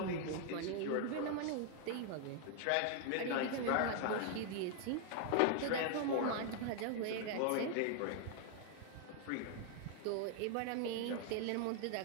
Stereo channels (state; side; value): different; both; correlation 0.00